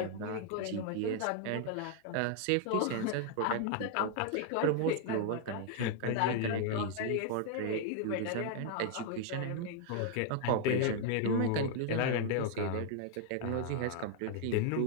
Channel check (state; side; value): different; both; correlation -0.01